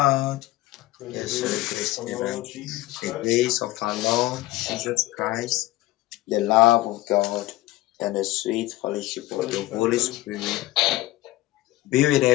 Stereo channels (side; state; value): right; quieter; 17.5 dB